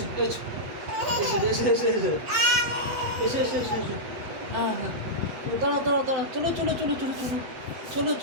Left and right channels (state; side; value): late; left; 8.2 ms